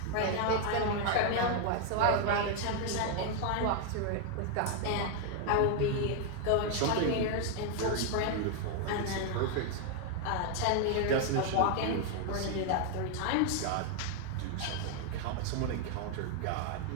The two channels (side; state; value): both; different; correlation 0.00